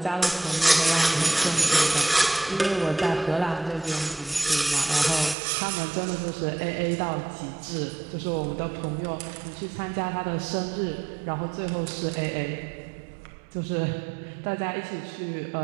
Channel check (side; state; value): left; drops out; at 5.4 s